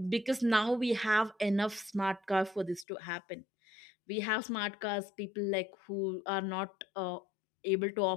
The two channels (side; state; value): right; drops out; at 2.9 s